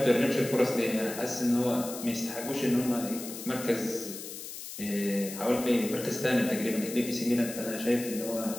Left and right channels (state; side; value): noise; left; hiss, 10 dB below the sound